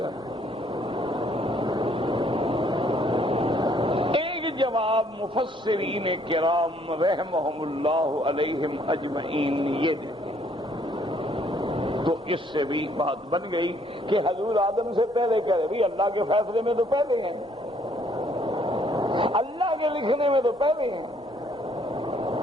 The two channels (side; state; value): both; normal; correlation 0.65